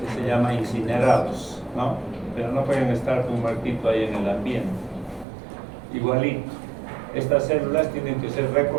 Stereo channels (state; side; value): drops out; left; at 5.2 s